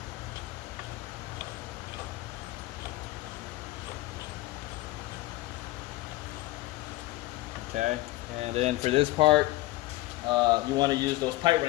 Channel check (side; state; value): right; quieter; 18.1 dB